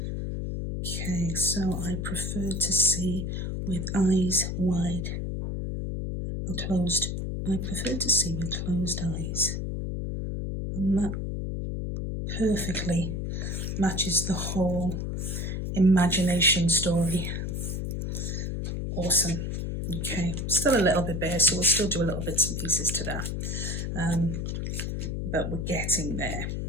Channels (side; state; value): left; noise; hum, 3 dB below the sound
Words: Okay, so I prefer to see with eyes wide or closed. I prefer to see with closed eyes, and that perfectly matches the whole imagination story. Awesome. Okay, still a little bit bare, so we'll still do a little bits and pieces to that, but we're getting there.